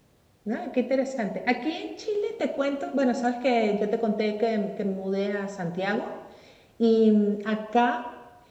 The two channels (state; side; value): identical; both; correlation 1.00